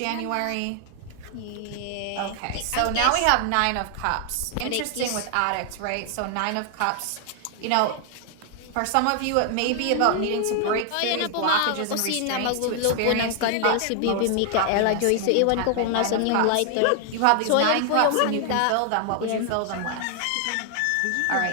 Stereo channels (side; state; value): both; different; correlation 0.00